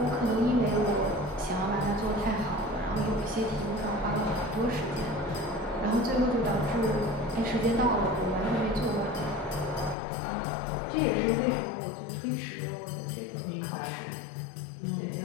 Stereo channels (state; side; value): drops out; right; at 10.0 s